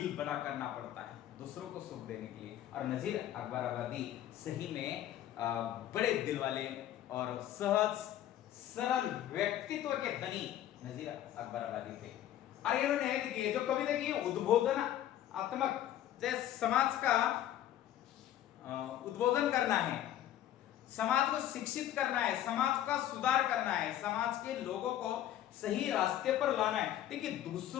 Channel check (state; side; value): quieter; right; 12.2 dB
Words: बड़ा करना पड़ता है दूसरों को सुख देने के लिए। और नजीर अकबराबादी सही में बड़े दिल वाले और सहज सरल व्यक्तित्व के धनी नजीर अकबराबादी थे। और इन्होंने देखिए जो कविता की उद्बोधनात्मक जैसे समाज का उद्बोधन करना है, समाज को शिक्षित करना है, समाज का सुधार करना है, समाज के लोगों को सही रास्ते पर लाना है। देखिए